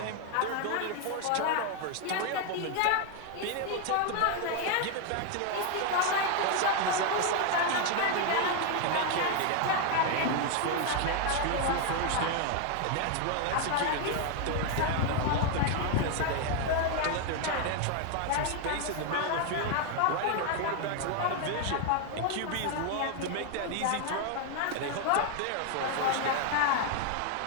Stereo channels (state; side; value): different; both; correlation 0.01